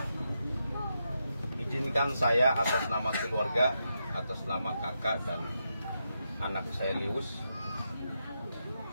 Izinkan saya atas nama keluarga, atas nama kakak dan anak saya Lius,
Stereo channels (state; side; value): inverted; both; correlation -0.84